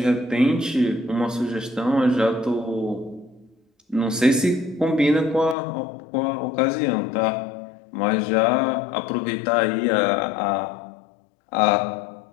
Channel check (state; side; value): drops out; right; at 5.6 s